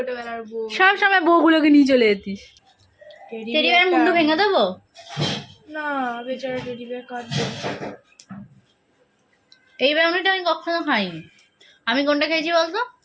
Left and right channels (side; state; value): both; identical; correlation 1.00